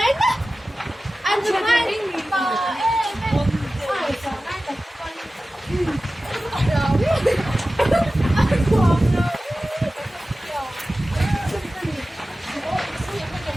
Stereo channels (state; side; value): normal; both; correlation 0.95